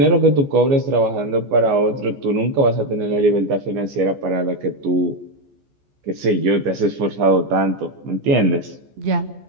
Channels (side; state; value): left; late; 15 ms